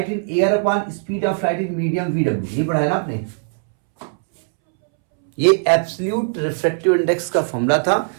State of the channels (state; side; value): silent; left; 66 dB below the other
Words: in air upon speed of light in medium VW, ये पढ़ा है ना आपने। ये एब्सोल्यूट रिफ्रैक्टिव इंडेक्स का फॉर्मूला था,